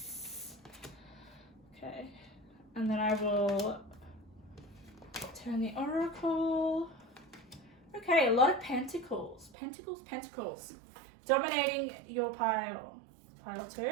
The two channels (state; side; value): drops out; left; at 9.5 s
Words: Okay, and then I will turn the oracle. Okay, a lot of pentacles, pentacles, dominating your pile